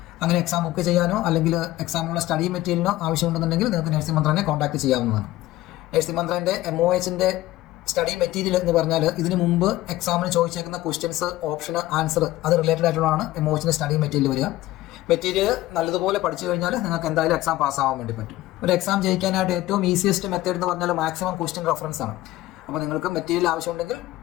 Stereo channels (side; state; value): right; quieter; 16.3 dB